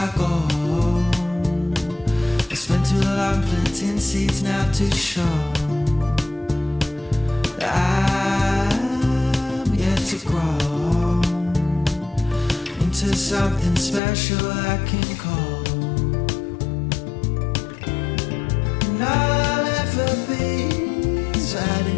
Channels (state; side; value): drops out; right; at 14.0 s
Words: go, I spent too long planting seeds now to show that I'm yet to grow into something special I can call. And I'll ever be